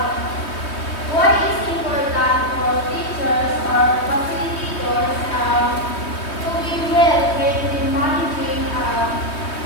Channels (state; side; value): late; right; 3.2 ms